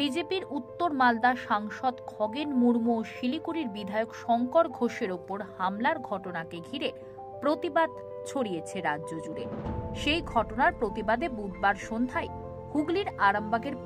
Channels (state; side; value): identical; both; correlation 1.00